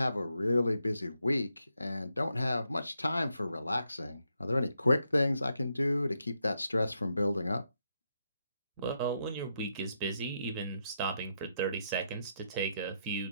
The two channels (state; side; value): inverted; both; correlation -0.80